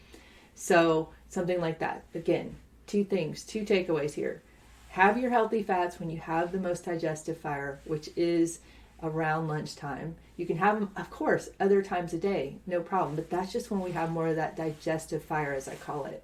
So something like that. Again, two takeaways here. Have your healthy fats when you have the most digestive fire, which is around lunchtime. You can have them, of course, other times a day, no problem. But that's just when we have more of that digestive fire, as I call it.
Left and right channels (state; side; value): identical; both; correlation 1.00